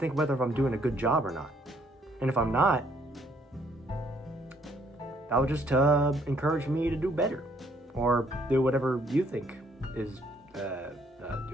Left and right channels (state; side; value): normal; both; correlation 0.67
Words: whether I'm doing a good job or not. And if I'm not, that will just encourage me to do better, or do whatever you think is